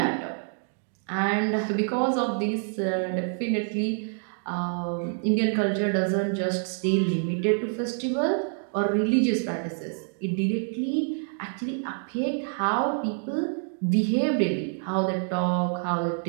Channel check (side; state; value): left; silent; 60 dB below the other